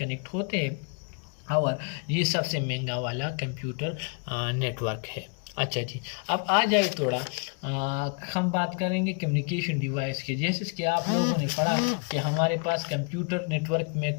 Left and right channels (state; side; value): quieter; right; 36.2 dB